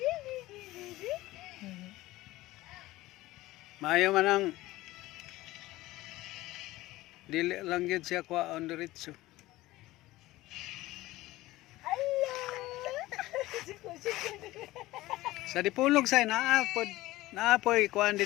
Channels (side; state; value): right; quieter; 17.8 dB